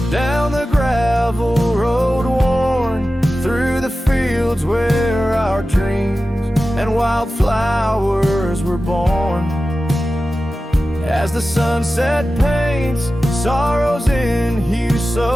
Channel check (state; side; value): normal; both; correlation 0.94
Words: down the gravel road worn, through the fields where our dreams and wildflowers were born. As the sunset paints sorrows in hue